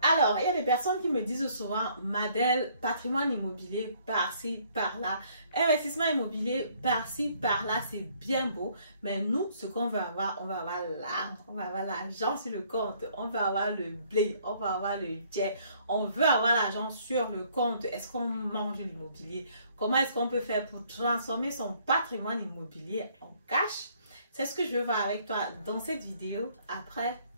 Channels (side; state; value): both; inverted; correlation -0.63